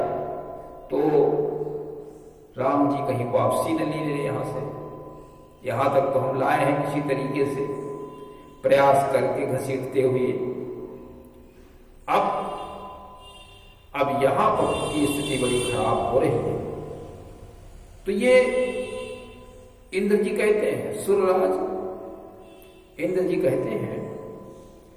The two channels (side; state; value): both; identical; correlation 1.00